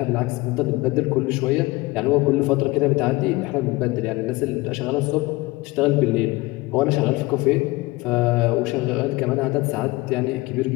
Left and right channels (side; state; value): right; quieter; 21.5 dB